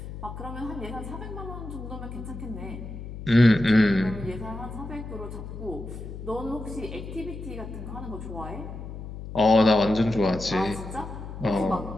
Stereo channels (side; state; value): left; noise; hum, 10 dB below the sound